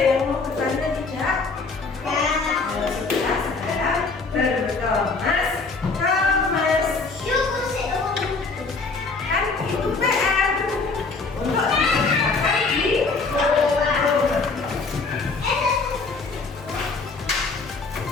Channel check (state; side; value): quieter; right; 4.1 dB